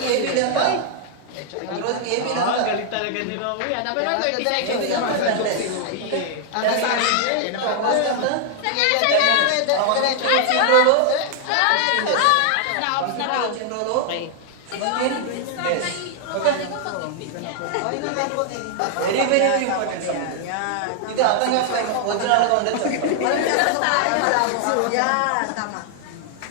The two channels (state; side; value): different; both; correlation 0.00